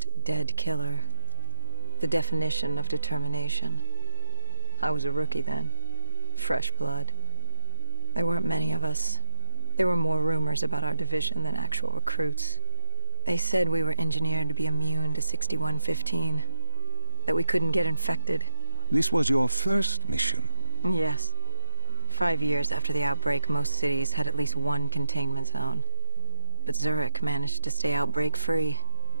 dead killer. The definition of determination. I was a rookie then. Fresh blood. There weren't many of us. There were more rumors about our division than actual recruits. They said we were engineered to be immune to 6115. That we couldn't get infected. This was your first mission? Yes. 5 years after the outbreak, most cities had at least one containment zone. But Zurich managed to stay outbreak-free.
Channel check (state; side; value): inverted; both; correlation -1.00